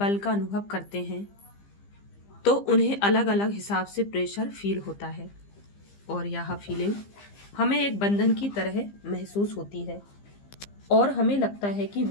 का अनुभव करते हैं तो उन्हें अलग अलग हिसाब से प्रेशर फील होता है और यह फीलिंग हमें एक बंधन की तरह महसूस होती है और हमें लगता है कि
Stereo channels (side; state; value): right; late; 15 ms